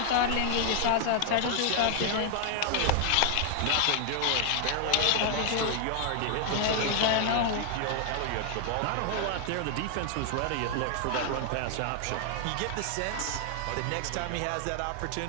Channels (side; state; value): both; different; correlation 0.00